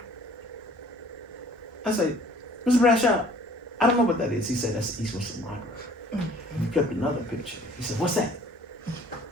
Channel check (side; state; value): both; normal; correlation 0.53